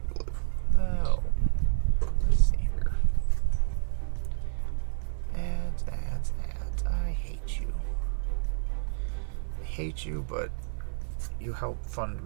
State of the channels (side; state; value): left; silent; digital silence